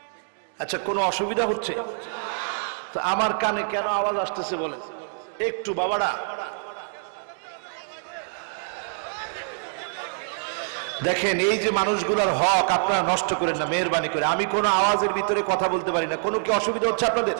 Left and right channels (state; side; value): silent; left; digital silence